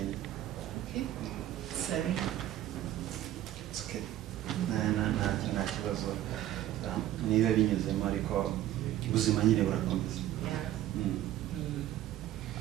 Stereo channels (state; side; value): quieter; left; 13.2 dB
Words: Sorry. It's okay. Nta kibazo. Niba binyuzemo ariko ubuzima nyine burakomeza.